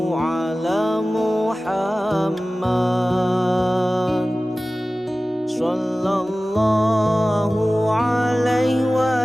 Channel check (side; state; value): both; normal; correlation 0.97